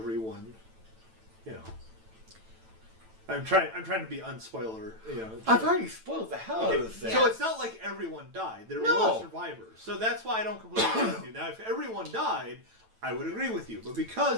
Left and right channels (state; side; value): late; left; 9.0 ms